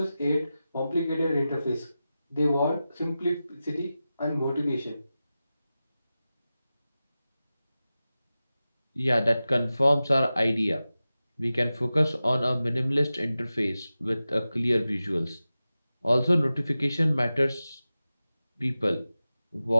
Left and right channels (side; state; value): both; inverted; correlation -0.94